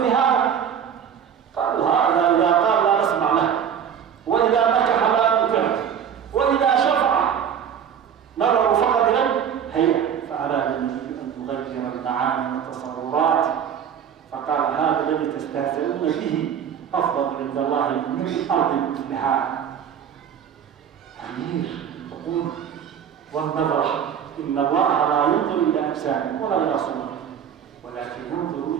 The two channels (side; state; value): left; quieter; 8.3 dB